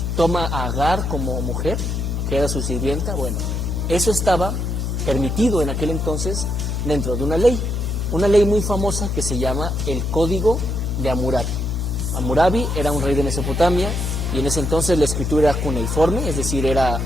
toma a Agar como mujer, que era su sirvienta? Bueno, eso estaba permitido en aquel entonces dentro de una ley muy famosa que se llama el Código de Hammurabi. Hammurabi era un rey de Mesopotamia y en ese entonces la escritura era cuneiforme, es decir, era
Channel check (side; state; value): left; noise; hum, 1 dB below the sound